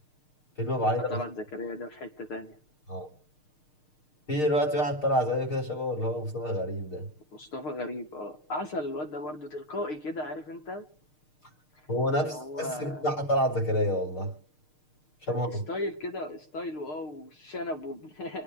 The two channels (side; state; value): right; late; 6.6 ms